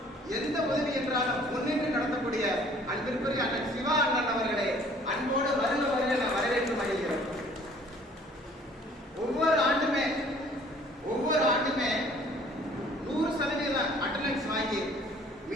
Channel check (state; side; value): normal; both; correlation 0.55